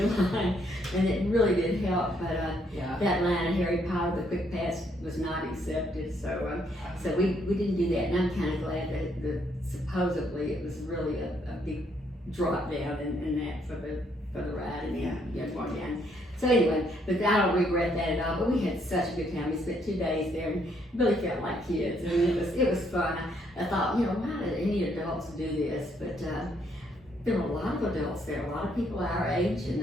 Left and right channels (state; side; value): normal; both; correlation 0.71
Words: in line, and it really did help. But that line at Harry Potter, the quick pass was not accepted, so we didn't do that. And I'm kind of glad that supposedly it was really a big drop down in that for the ride, and going down. So anyway, but I don't regret that at all. But we had such a good time. We spent 2 days there and really felt like kids. I mean, it was fun. I thought, why did any adults do this? But there were a lot of adults there, a lot of people our age,